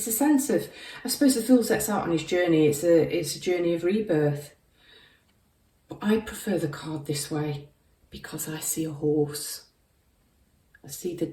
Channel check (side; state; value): both; identical; correlation 1.00